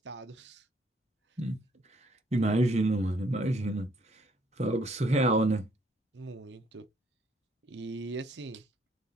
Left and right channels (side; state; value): both; normal; correlation 0.67